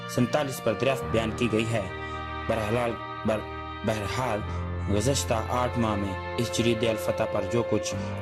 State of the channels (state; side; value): identical; both; correlation 1.00